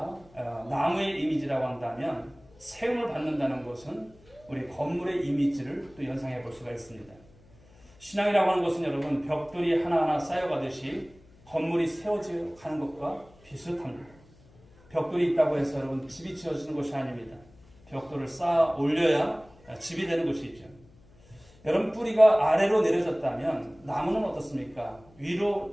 나무의 이미지라고 한다면 세움을 받는다는 것은 우리 건물의 이미지를 또 연상해 볼 수가 있습니다. 신앙이라고 하는 것은 여러분 벽돌이 하나하나 쌓여가듯이 건물이 세워져 가는 것과 비슷합니다. 벽돌이 있다고 해서 여러분 집이 지어지는 것이 아닙니다. 벽돌을 쌓아 올려야 집이 되는 것이죠. 여러분 뿌리가 아래로 내려졌다면 나무는 어떻습니까? 위로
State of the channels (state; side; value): noise; left; hum, 27 dB below the sound